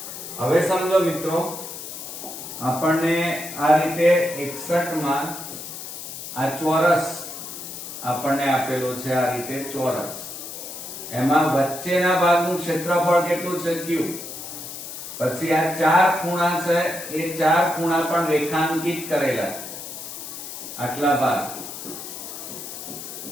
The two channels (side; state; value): left; noise; hiss, 10 dB below the sound